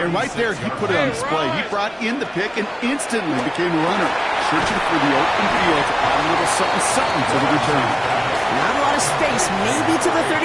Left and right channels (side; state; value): both; identical; correlation 1.00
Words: And right there, he put it on display. He brought in the pick and instantly became a runner, searching for the open field to add a little something to the return. Not a lot of space, maybe to the